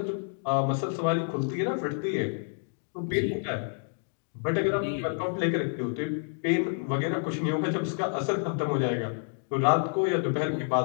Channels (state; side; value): silent; right; digital silence